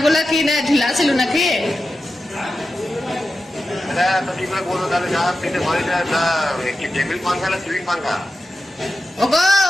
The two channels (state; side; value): normal; both; correlation 0.92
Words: কি না ঢিলা ছিল নাকি? এটা তো কি করে বলবো তাহলে? যা পেটে ভরে যায়, তা কি টেবিল পাঙ্খা না সিলিং পাঙ্খা? ওগো